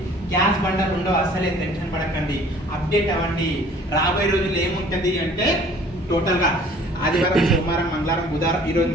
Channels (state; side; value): normal; both; correlation 0.52